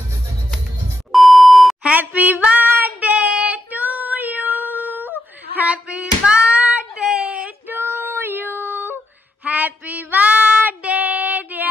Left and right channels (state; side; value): normal; both; correlation 0.83